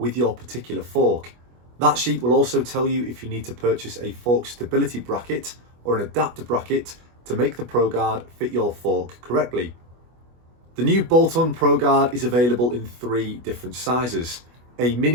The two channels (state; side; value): late; left; 25 ms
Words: your particular fork. That sheet will also tell you if you need to purchase a fork stability bracket or an adapter bracket to make the ProGuard fit your fork correctly. The new bolt-on ProGuard is available in 3 different sizes: a